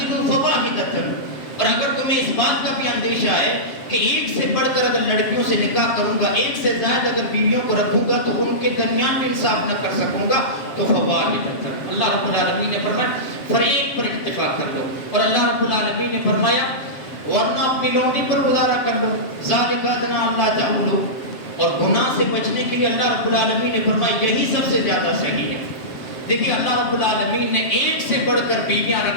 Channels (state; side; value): late; right; 7.4 ms